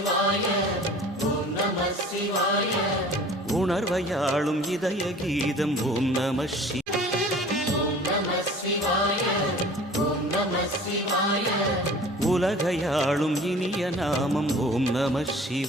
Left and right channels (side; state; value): both; normal; correlation 0.45